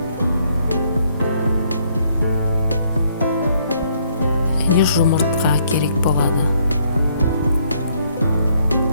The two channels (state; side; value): inverted; both; correlation -0.68